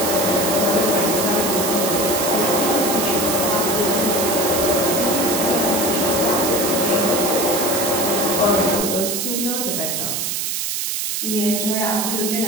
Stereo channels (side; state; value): right; noise; hiss, 1 dB below the sound